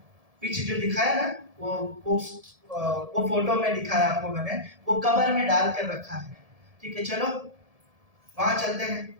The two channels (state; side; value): late; left; 1.7 ms